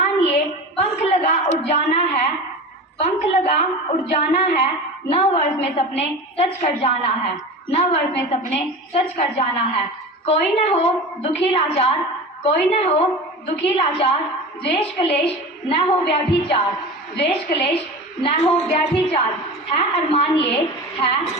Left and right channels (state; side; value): normal; both; correlation 0.31